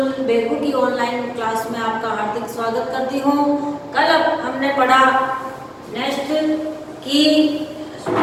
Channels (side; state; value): both; identical; correlation 1.00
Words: Begu की online class में आपका हार्दिक स्वागत करती हूँ। कल हमने पढ़ा नेक्स्ट की